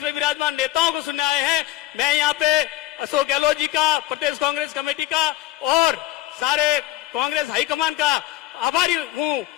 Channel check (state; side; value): quieter; right; 15.8 dB